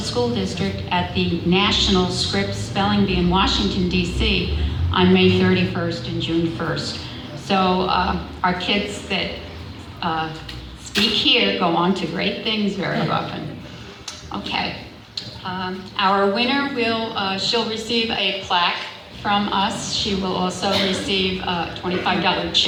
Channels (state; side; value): identical; both; correlation 1.00